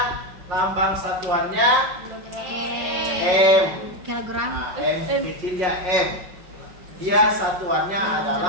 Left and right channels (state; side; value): late; left; 5.5 ms